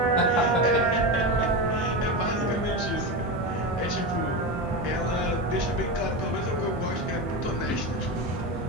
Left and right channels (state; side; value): normal; both; correlation 0.18